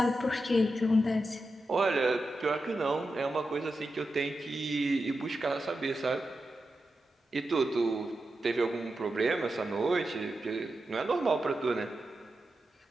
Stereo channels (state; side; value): normal; both; correlation 0.89